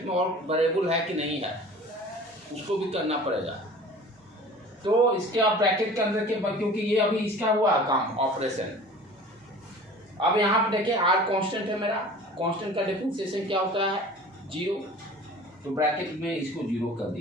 में और वेरिएबल है कि नहीं है, उसको भी करना पड़ेगा। तो इसके आप ब्रैकेट के अंदर के, क्योंकि ये अभी इसका हुआ काम ऑपरेशन। अब यहाँ पे देखिए आर कांस्टेंट है मेरा, कांस्टेंट का डिफरेंशिएशन क्या होता है? 0। तो ब्रैकेट में इसको 0 कर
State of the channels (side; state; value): both; normal; correlation 0.43